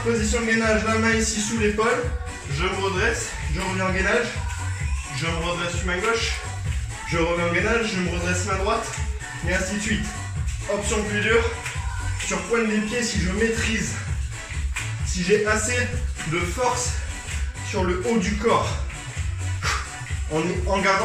gainage. La main ici sous l'épaule. Je me redresse. Je reviens en gainage. Je me redresse sur ma gauche. Je reviens en gainage. Je me redresse main droite. Et ainsi de suite. Option plus dure. Sur pointe des pieds si je maîtrise. Si j'ai assez de force sur le haut du corps. En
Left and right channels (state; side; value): identical; both; correlation 1.00